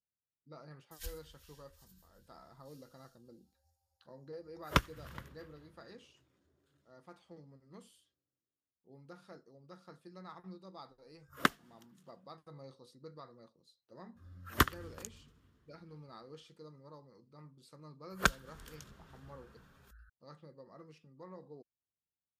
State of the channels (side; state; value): both; identical; correlation 1.00